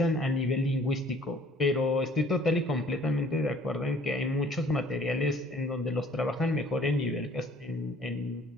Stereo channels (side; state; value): both; normal; correlation 0.56